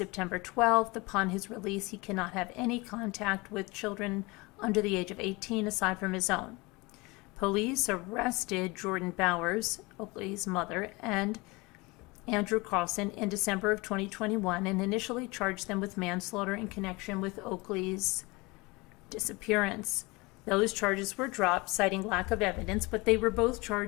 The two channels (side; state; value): right; quieter; 24.7 dB